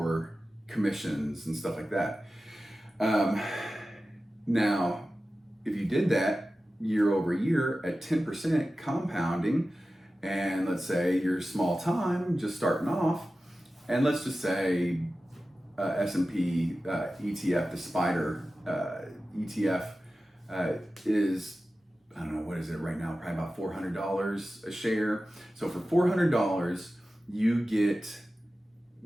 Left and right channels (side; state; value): both; normal; correlation 0.95